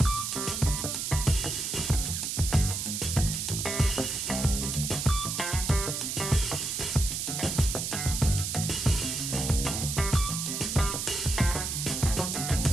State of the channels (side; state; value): right; noise; hiss, 3 dB below the sound